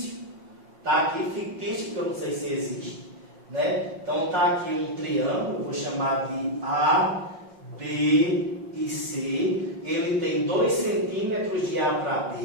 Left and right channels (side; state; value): left; late; 5.5 ms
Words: Está aqui fictício, que eu não sei se existe, né? Então, está aqui um triângulo, vou chamar de A, B e C. Ele tem 2 centímetros de A para